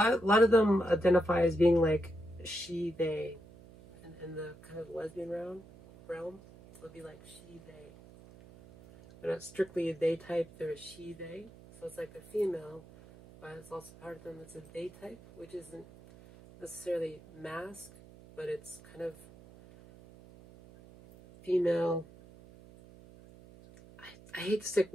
of them identify as being like she, they, in the kind of lesbian realm. It'll be like she, they. They're not strictly a they type, they're a she, they. So it's like a female, but it's also part of them that's a they type, which isn't necessarily masc, but it's kind of female. I hate to stick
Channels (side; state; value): right; noise; hum, 21 dB below the sound